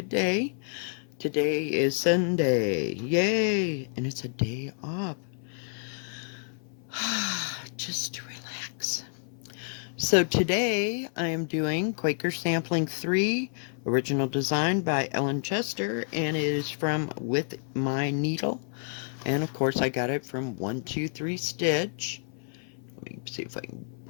day. Today is Sunday. Yay! And it's a day off. Just to relax. So today I am doing Quaker Sampling 3, original design by Ellen Chester, and it is from With My Needle. And of course I got it from 123 Stitch. Let me see if I can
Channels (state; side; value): silent; right; 55 dB below the other